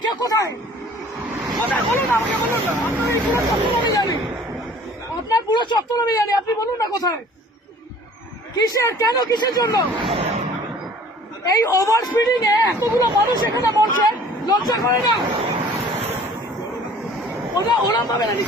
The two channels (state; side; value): normal; both; correlation 0.50